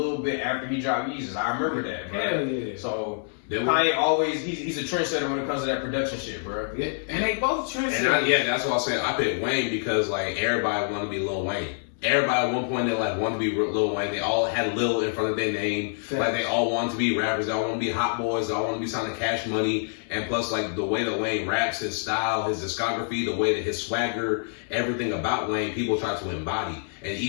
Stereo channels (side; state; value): right; silent; 61 dB below the other